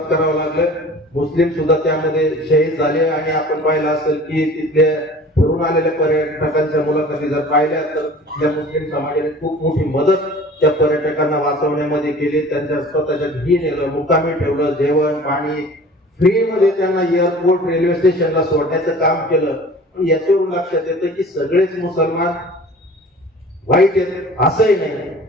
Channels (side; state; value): both; normal; correlation 0.44